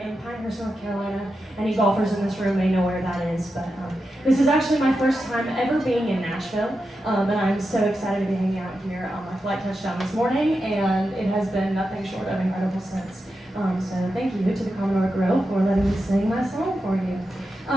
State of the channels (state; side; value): normal; both; correlation 0.89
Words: Pinehurst, North Carolina. Any golfers in this room may know where that is, but this is actually my first time ever being in Nashville, and I'm so excited to be hanging out here. My flight touched down this morning, and it has been nothing short of incredible since. So thank you to the Commodore Grill for letting me sing my song for you.